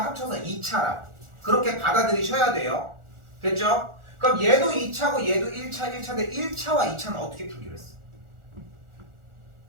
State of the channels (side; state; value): left; late; 1.4 ms